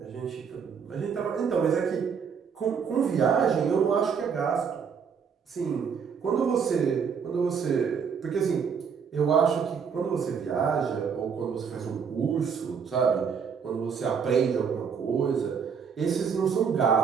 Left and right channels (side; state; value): left; quieter; 6.5 dB